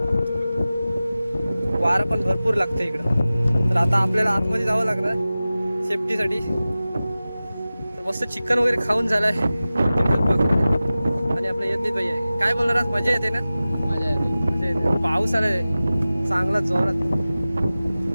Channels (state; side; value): inverted; both; correlation -0.96